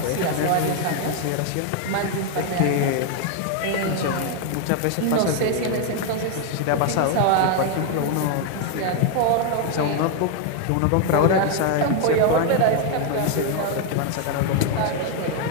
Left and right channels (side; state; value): both; different; correlation 0.01